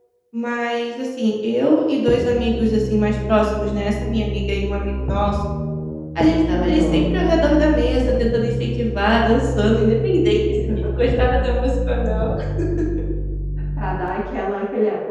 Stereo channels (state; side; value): identical; both; correlation 1.00